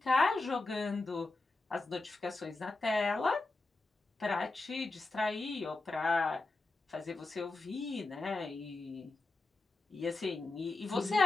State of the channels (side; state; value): right; quieter; 3.2 dB